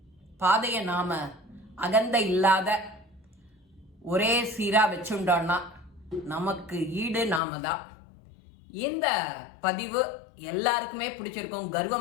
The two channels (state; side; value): drops out; right; at 7.4 s